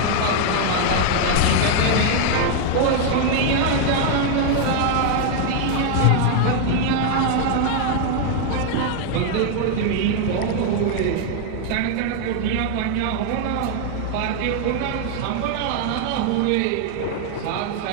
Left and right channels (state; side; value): different; both; correlation 0.00